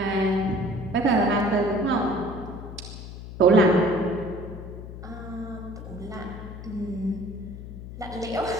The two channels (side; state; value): left; noise; hum, 11 dB below the sound